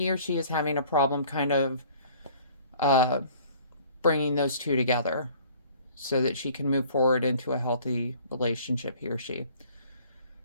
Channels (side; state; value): both; inverted; correlation -0.53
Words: or she is having a problem kind of bringing those two together so that she can move forward into a healthy relationship, he or she.